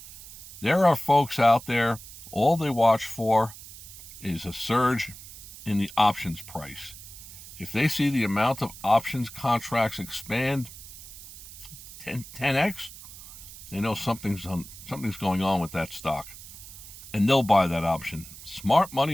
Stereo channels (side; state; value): right; noise; hiss, 15 dB below the sound